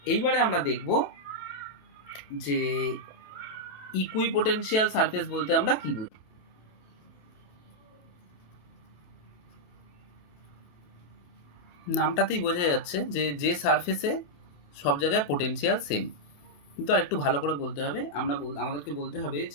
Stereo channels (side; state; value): right; late; 28 ms